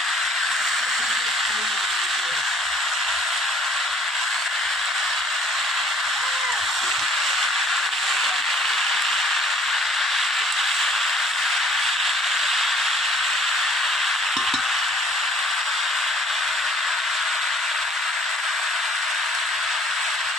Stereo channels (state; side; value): normal; both; correlation 0.57